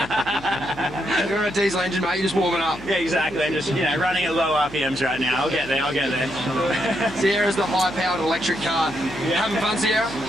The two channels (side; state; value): left; noise; hum, 19 dB below the sound